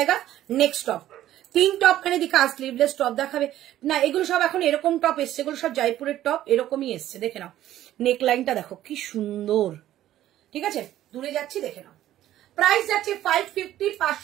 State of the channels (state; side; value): quieter; left; 13.1 dB